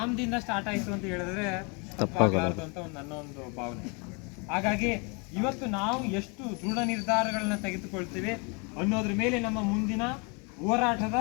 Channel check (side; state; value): right; quieter; 32.3 dB